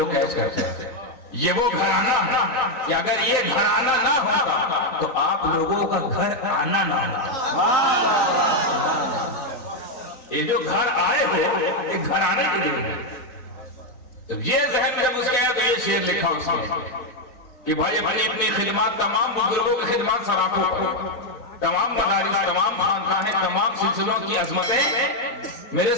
कैच करते हैं, ये वो घराना है कि अगर ये घराना ना होता तो आप लोगों का घर आना ना होता। ये जो घर आए हो ये घराने के लिए, तो ये जहन जब उसके आया तो ये शेर लिखा उसने कि भाई अपनी अपनी खिदमत, तमाम बुजुर्गों की खिदमत सराखों पर, तमाम मदारिस, तमाम खानकाहें, तमाम सिलसिलों की अजमतें मेरे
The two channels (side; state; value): right; late; 3.9 ms